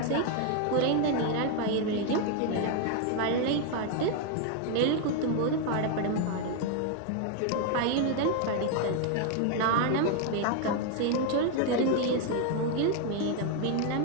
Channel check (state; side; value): different; both; correlation 0.00